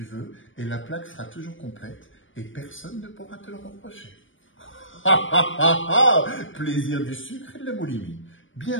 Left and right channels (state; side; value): late; right; 0.57 ms